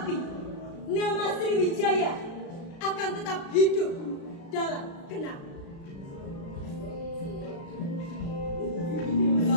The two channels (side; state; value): right; late; 36 ms